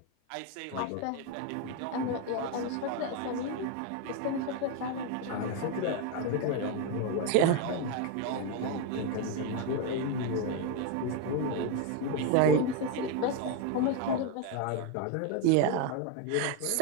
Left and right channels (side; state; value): both; different; correlation 0.02